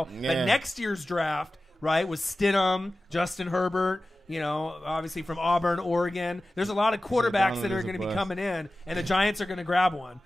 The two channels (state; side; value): normal; both; correlation 0.95